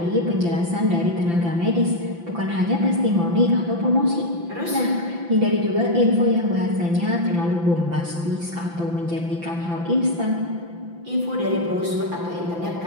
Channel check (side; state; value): left; late; 5.9 ms